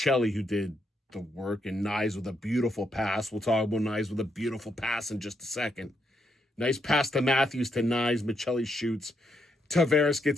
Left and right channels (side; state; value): both; normal; correlation 0.78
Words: who did the work, and Nyes with a beautiful pass. We'll talk about Nyes with a beautiful pass in just a second. Nice pass to Matthews to Nyes. Michelli shoots. Tavares